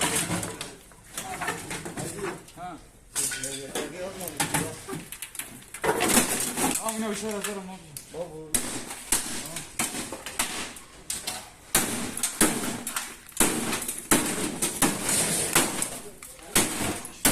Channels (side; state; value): both; identical; correlation 1.00